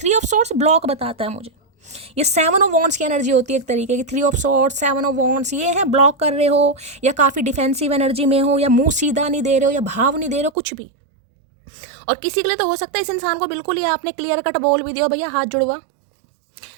ऑफ सोर्ट्स ब्लॉक बताता है मुझे, ये 7 ऑफ वॉन्ड्स की एनर्जी होती है एक तरीके की। 3 ऑफ सोर्ट्स, 7 ऑफ वॉन्ड्स, ये है ब्लॉक कर रहे हो या काफ़ी डिफेंसिव एनर्जी में हो या मुंह सीधा नहीं दे रहे हो या भाव नहीं दे रहे हो, कुछ भी। और किसी के लिए तो हो सकता है इस इंसान को बिल्कुल ही आपने क्लियर कट बोल भी दिया भैया हाथ जुड़वा,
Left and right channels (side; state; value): left; drops out; at 10.5 s